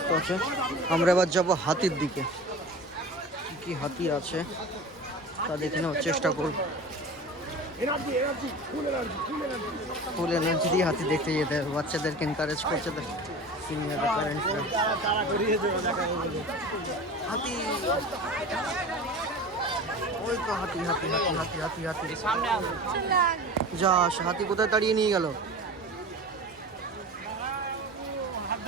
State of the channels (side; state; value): both; normal; correlation 0.34